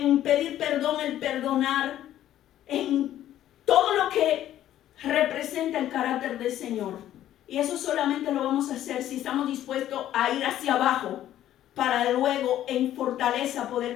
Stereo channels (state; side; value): quieter; right; 12.3 dB